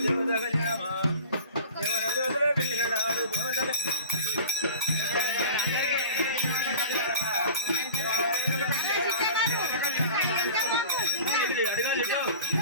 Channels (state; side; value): inverted; both; correlation -0.38